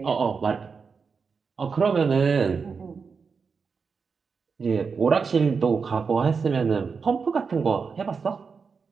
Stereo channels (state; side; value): quieter; left; 5.4 dB